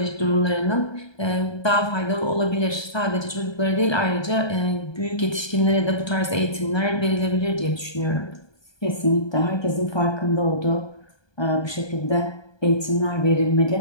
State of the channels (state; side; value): late; right; 1.2 ms